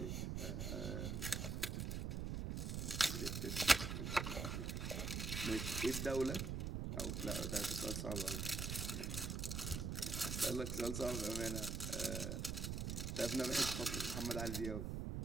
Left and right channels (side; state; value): right; noise; rumble, 2 dB below the sound